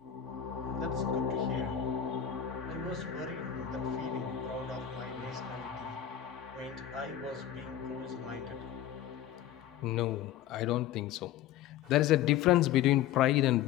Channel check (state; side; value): quieter; right; 10.5 dB